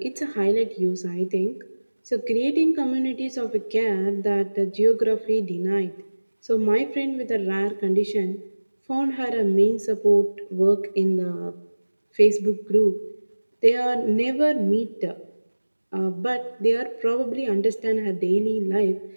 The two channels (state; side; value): inverted; both; correlation -1.00